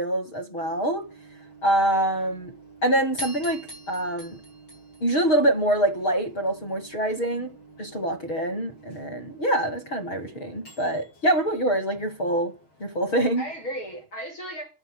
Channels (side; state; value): right; late; 6.3 ms